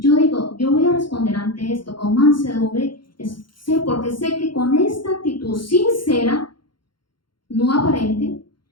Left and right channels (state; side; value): late; right; 0.72 ms